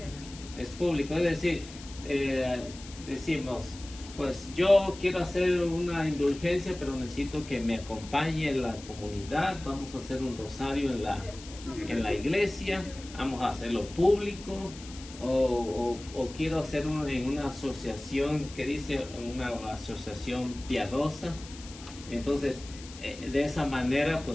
Es público, es decir, decimos, pues yo quiero hacer una indulgencia, pero necesito que me acompañe la comunidad, vamos a hacer un rosario en la iglesia, vamos a hacerlo público, o quiero hacer en una asociación que dice una asociación piadosa. Entonces, de esa manera,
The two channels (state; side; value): noise; left; hiss, 16 dB below the sound